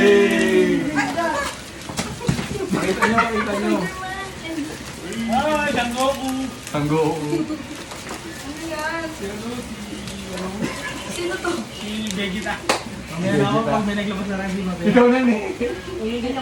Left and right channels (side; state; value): both; identical; correlation 1.00